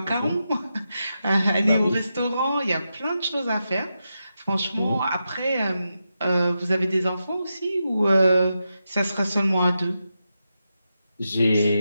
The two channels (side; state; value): both; inverted; correlation -0.88